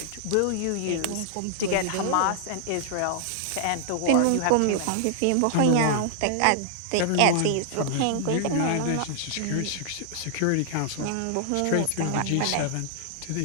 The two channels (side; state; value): both; different; correlation -0.01